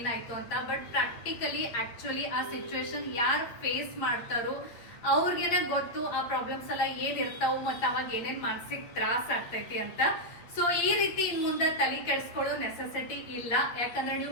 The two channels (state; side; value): late; right; 8.4 ms